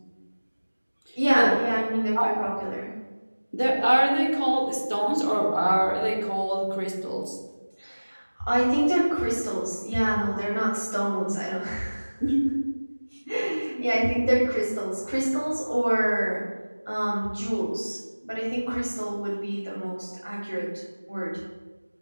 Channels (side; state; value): both; inverted; correlation -1.00